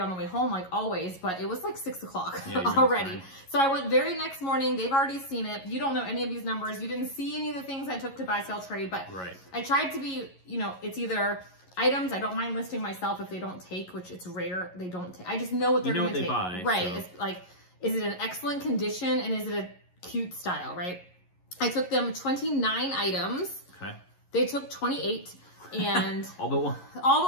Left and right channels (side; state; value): right; late; 11 ms